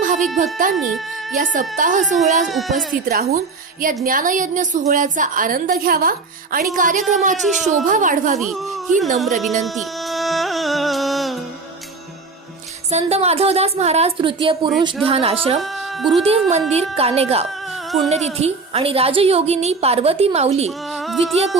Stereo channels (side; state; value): left; quieter; 4.1 dB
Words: भाविक भक्तांनी या सप्ताह सोहळ्यात उपस्थित राहून या ज्ञानयज्ञ सोहळ्याचा आनंद घ्यावा आणि कार्यक्रमाची शोभा वाढवावी ही नम्र विनंती. संत माधवदास महाराज तृतीय पुरुष ध्यान आश्रम, गुरुदेव मंदिर, कानेगाव पुण्यतिथी आणि राजयोगिनी पार्वती माऊली द्वितीय